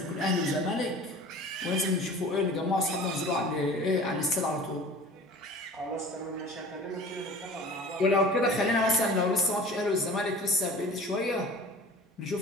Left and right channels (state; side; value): normal; both; correlation 0.42